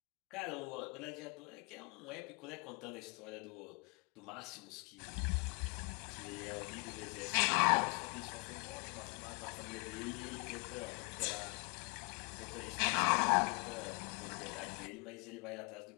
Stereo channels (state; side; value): quieter; right; 32.2 dB